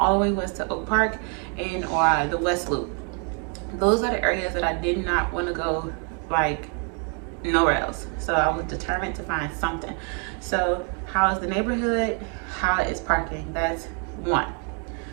the way west to Oak Park and or the West Loop. Those are the areas that I did not want to go like nowhere else. So I was determined to find something. So how is the neighborhood? How is parking? That's one.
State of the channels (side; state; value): left; quieter; 39.0 dB